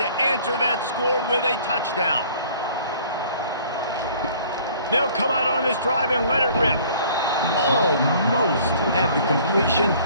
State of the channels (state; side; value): inverted; both; correlation -0.53